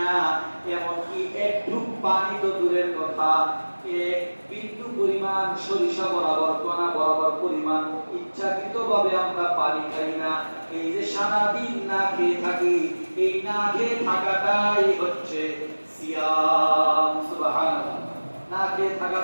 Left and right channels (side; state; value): both; inverted; correlation -1.00